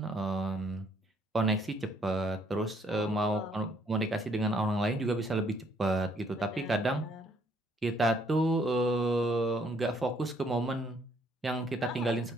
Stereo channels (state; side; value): normal; both; correlation 0.66